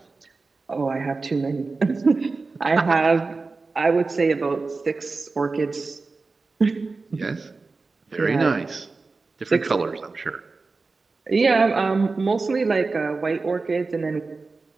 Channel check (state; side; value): quieter; left; 4.0 dB